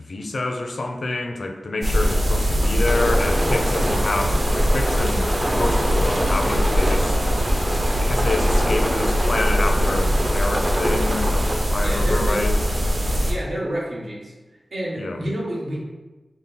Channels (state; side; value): normal; both; correlation 0.96